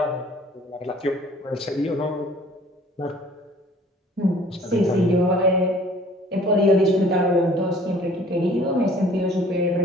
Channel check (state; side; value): normal; both; correlation 0.53